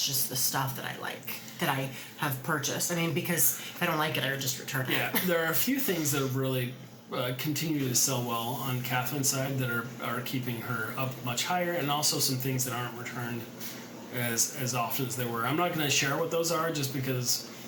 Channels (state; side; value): identical; both; correlation 1.00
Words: just the stuff that I like, that I have purchased. I mean, because if I don't like it, I would just return it. Yeah, there are a few things that have really continue to sell well on Catherine's side that are keeping her up much higher, and also some things that aren't returned as often as they were. I'm not going to share what those are just because